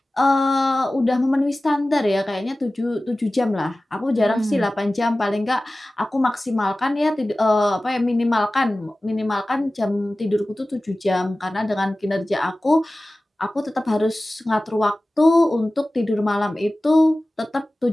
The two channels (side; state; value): both; normal; correlation 0.97